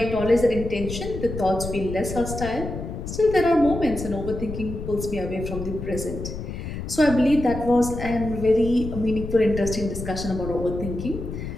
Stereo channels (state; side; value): noise; left; rumble, 7 dB below the sound